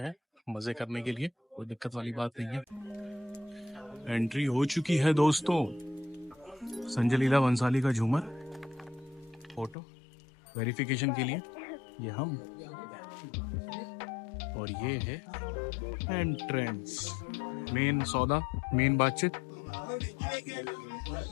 मजे करने के लिए, कोई दिक्कत वाली बात नहीं है। एंट्री हो चुकी है दोस्तों। संजय लीला बंसाली का झूमर, फोटो वेरिफिकेशन के लिए ये हम, और ये है एंट्रेंस। मेन सौदा, मेन बातचीत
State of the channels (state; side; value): drops out; right; at 9.8 s